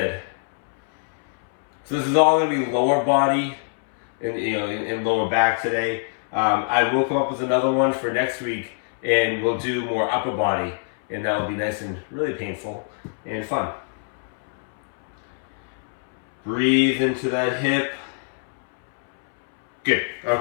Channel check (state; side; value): silent; right; 63 dB below the other